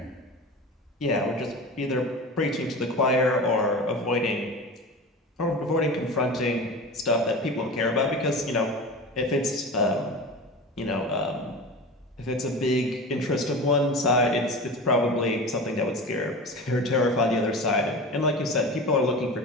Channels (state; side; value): normal; both; correlation 0.31